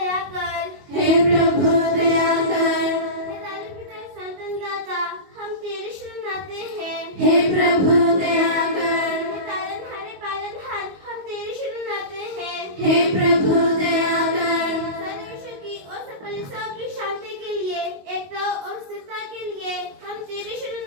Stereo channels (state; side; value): late; left; 22 ms